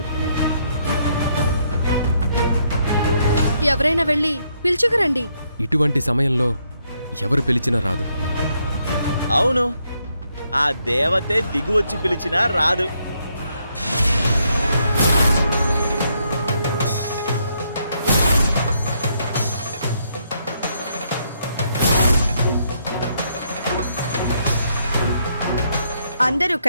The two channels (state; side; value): inverted; both; correlation -0.75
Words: ఎవరైనా వెళ్ళి పిలుచుకురండి. ఇటువంటి సమయంలో ఎవరు పిలిచినా రాదు. అవును, ఆ దేవతే దిగువచ్చి పిలిచినా రాదు. అందరూ